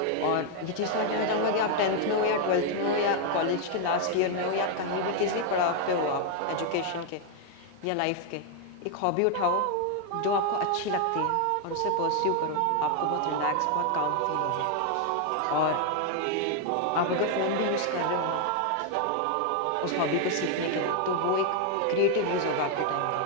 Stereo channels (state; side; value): different; both; correlation 0.00